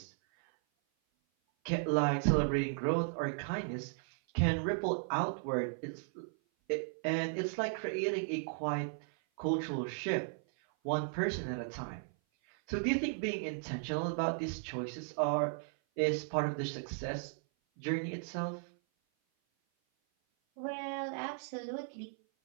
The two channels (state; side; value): silent; left; 54 dB below the other